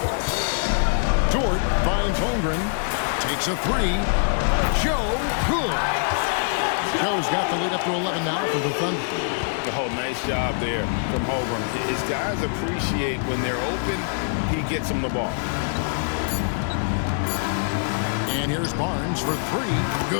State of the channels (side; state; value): right; silent; digital silence